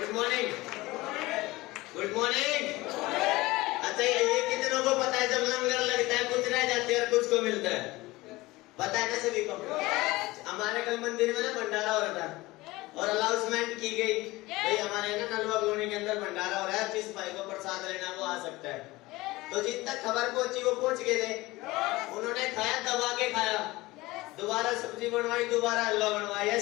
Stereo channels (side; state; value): right; quieter; 20.1 dB